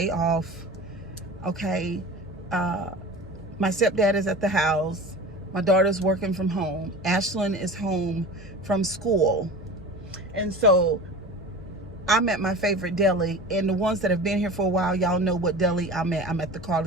off. Okay, my stepdad is at the house. My daughter's working from home. Ashlyn is home from school. And so I'm at my favorite deli, and the ones that have been here for a while, y'all know what deli I'm at. I'm at the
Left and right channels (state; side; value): normal; both; correlation 0.35